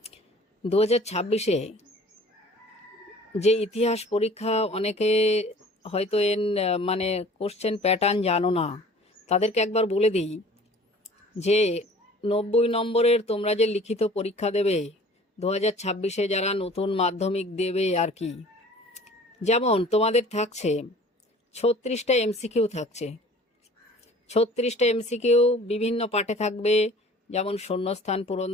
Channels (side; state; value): both; normal; correlation 0.48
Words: 2026-এ যে ইতিহাস পরীক্ষা, অনেকে হয়তো মানে কোশ্চেন প্যাটার্ন জানো না, তাদেরকে একবার বলে দিই যে 90 নম্বরের তোমরা যে লিখিত পরীক্ষা দেবে 2026-এ, যারা নতুন মাধ্যমিক দেবে আর কি, যেমন তোমাদের থাকছে 36টা এমসিকিউ থাকছে। 36টা এমসিকিউ বিভিন্ন পাঠে থাকবে, যেমন শূন্যস্থান পূরণ